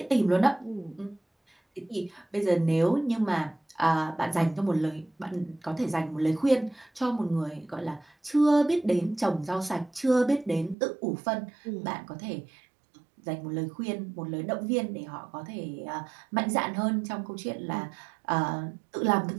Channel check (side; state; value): left; drops out; at 10.8 s